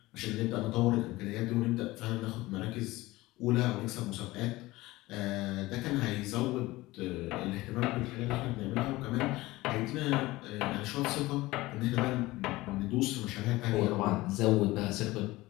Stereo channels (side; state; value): right; quieter; 19.3 dB